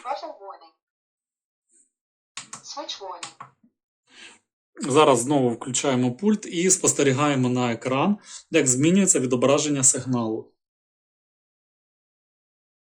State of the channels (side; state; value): both; identical; correlation 1.00